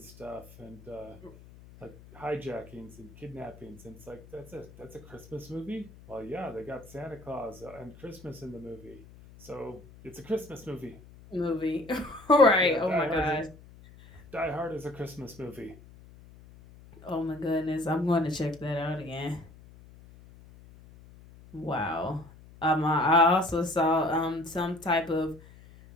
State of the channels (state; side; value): noise; left; hum, 21 dB below the sound